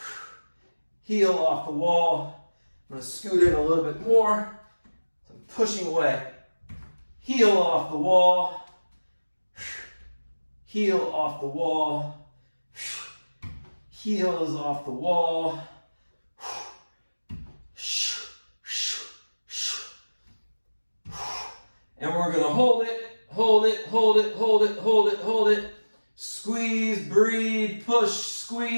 heel off the wall. I'm going to scoot in a little bit more. So I'm pushing away. Heel off the wall, heel off the wall, heel is off the wall. And we're going to hold it, hold it, hold it, hold it, hold it, hold it. Squeeze, breathe, push,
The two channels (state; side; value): inverted; both; correlation -1.00